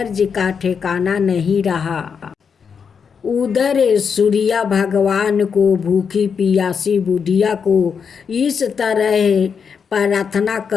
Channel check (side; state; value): right; quieter; 6.4 dB